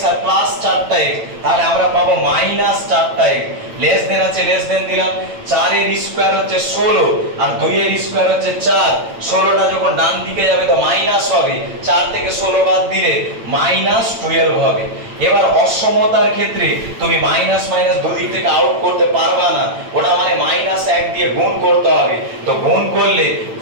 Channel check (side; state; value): left; late; 8.9 ms